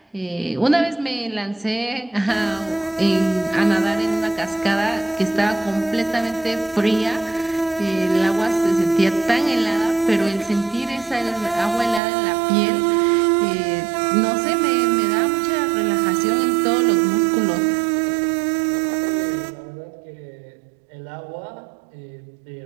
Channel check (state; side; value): drops out; left; at 12.0 s